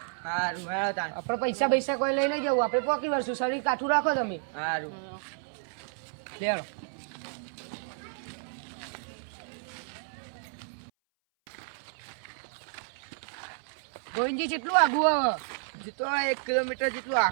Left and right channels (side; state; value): left; silent; 57 dB below the other